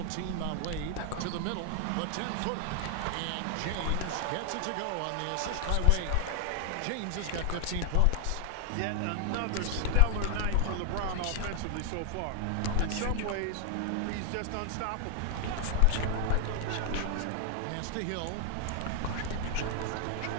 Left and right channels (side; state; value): both; different; correlation 0.00